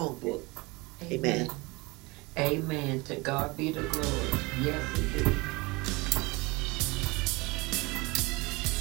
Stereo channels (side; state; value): left; quieter; 24.8 dB